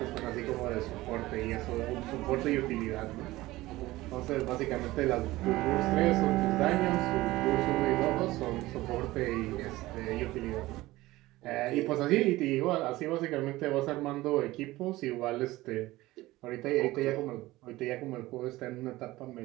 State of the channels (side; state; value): left; quieter; 18.3 dB